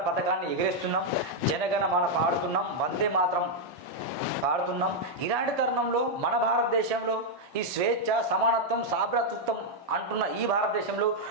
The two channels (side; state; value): both; normal; correlation -0.01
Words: పథకాన్ని ఎగిరేస్తున్నాం, జనగణ మన పాడుతున్నాం, వందే మాత్రం పాడుతున్నాం. ఇలాంటి తరుణంలో మన భారతదేశంలో ఈ స్వేచ్ఛ, సమానత్వం, సాభ్రతృత్వం అంటున్న ఈ భారతదేశంలో,